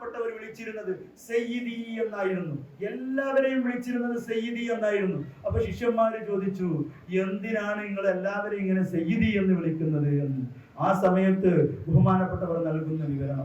വിളിച്ചിരുന്നത് സയ്യിദി എന്നായിരുന്നു. എല്ലാവരെയും വിളിച്ചിരുന്നത് സയ്യിദി എന്നായിരുന്നു. അപ്പൊ ശിഷ്യന്മാര് ചോദിച്ചു, എന്തിനാണ് നിങ്ങൾ എല്ലാവരെയും ഇങ്ങനെ സയ്യിദി എന്ന് വിളിക്കുന്നത് എന്ന്. ആ സമയത്ത് ബഹുമാനപ്പെട്ടവർ നൽകുന്ന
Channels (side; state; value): both; identical; correlation 1.00